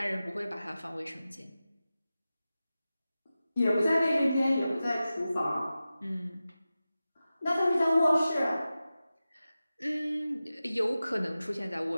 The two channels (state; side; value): inverted; both; correlation -0.94